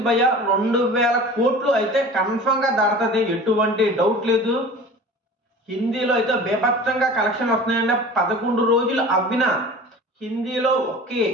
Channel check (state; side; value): normal; both; correlation 0.39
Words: భయ్య 2000 కోట్లు అయితే కన్ఫర్మ్ గా దాటుతుంది, ఎటువంటి డౌట్ లేదు. హిందీలో అయితే బేభత్సంగా కలెక్షన్ వస్తున్నాయండి. 11 రోజులు అవ్విన హిందీలో ఒకే